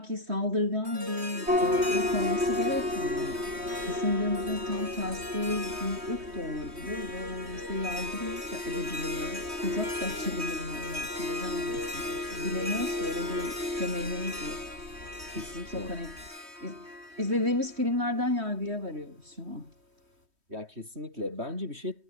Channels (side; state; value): left; late; 3.2 ms